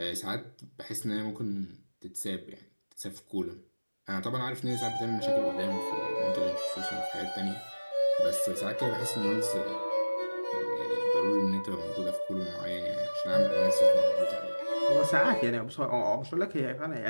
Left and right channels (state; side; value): inverted; both; correlation -1.00